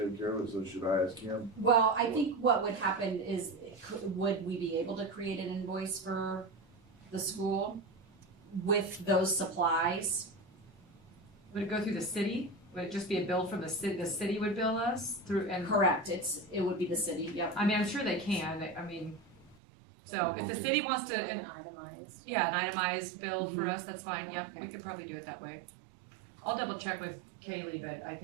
care of it, so should I ask him? well, I think what would happen is, would we be able to create an invoice for the school with those supplies? Would it go through the city? Would it just be a bill from the city would bill us through, and, Correct, it would be the city, yep. I mean, I'm sure they can, I mean, so if the city wants to, An itemized. yeah, an itemized bill for us, that's fine, yep, we could probably do it that way. I'll double check with Kaylee, but I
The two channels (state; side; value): drops out; left; at 19.6 s